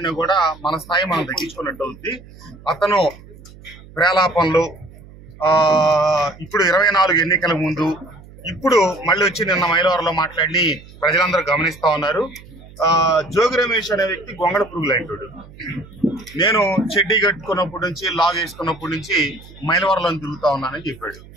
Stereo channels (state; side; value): noise; right; hum, 20 dB below the sound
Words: కూడా మన స్థాయి మనం తగ్గించుకున్నట్టు అవుతుంది. అతను ప్రేలాపనలు ఇప్పుడు 24 ఎన్నికల ముందు ఇప్పుడు మళ్ళీ వచ్చి నిన్న మైలవరంలో మాట్లాడి ప్రజలందరూ గమనిస్తా ఉన్నారు. జోగి రమేష్ అనే వ్యక్తి గొంగళ పురుగులు అంటాడు. నేను చెడ్డీ కట్టుకున్నప్పటి నుంచి లాగ్ వేసుకున్నప్పటి నుంచి మైలవరంలో తిరుగుతా ఉన్నానని చెప్పాడు.